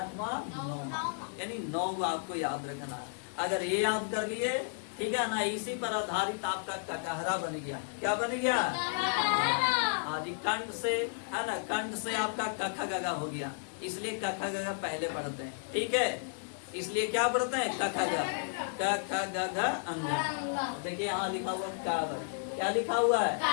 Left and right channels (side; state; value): right; silent; digital silence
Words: 9वां। यानी 9 आपको याद रखना है। अगर ये याद कर लिए, ठीक है ना, इसी पर आधारित आपका ककहरा बन गया। क्या बन गया? हाँ जी, कंठ से है ना, कंठ से आपका कख गगा हो गया। इसलिए कख गगा पहले पढ़ते हैं। ठीक है, इसलिए क्या पढ़ते हैं? कख ग क ख ग अंग। देखिए यहाँ लिखा हुआ का वर्ग। क्या लिखा हुआ है?